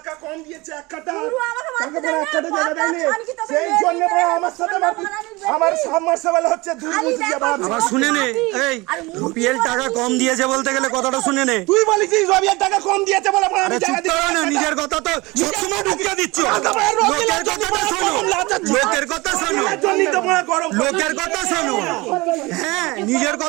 কম দিয়েছে 1 কাটা। পুরো আমাকে মারতে টাকা দেয় বড় না, 1 কাটা জায়গা দেয়নি। খালি কি তোকে সেই মেরে জন্য দিবে? বড় আমার সাথে সোনা মারপিট। মারানির বেশি। আমার সাবমার্সিবল হচ্ছে খালি দুর্বুদ্ধি দেখো, বাবা। আবার শুনে নে, এই রবিএল টাকা কম দিয়েছে বলতে গেলে কথাটা শুনে নে। তুই বলেছিস রবিএল টাকা কম দিয়েছে বলে আমি আরে চুপ জায়গা করো না, দিচ্ছি। নিজের কথা তো সবসময় ঢুকিয়ে দিচ্ছ। একেবারে রবিএলের লোকের জন্য কথাটা শোনো, গরম লাগাচ্ছিস। লোকের কথা শোনো, এর জন্যই তো বড় গরম। লোকের কথা শোনো। হ্যাঁ, নিজের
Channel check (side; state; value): left; quieter; 23.0 dB